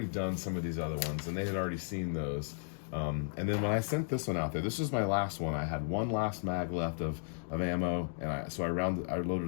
done some of these other ones, and they had already seen those. And then when I sent this one out there, this was my last one. I had one last mag left of ammo, and I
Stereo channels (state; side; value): silent; right; digital silence